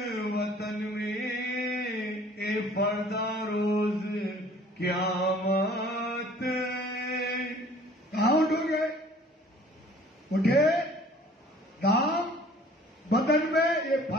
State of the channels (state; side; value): normal; both; correlation 0.52